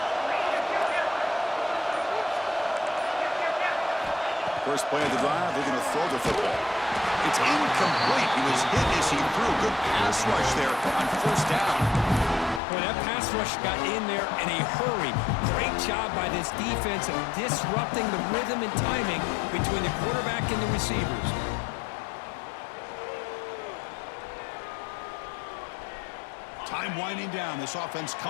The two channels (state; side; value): drops out; right; at 12.6 s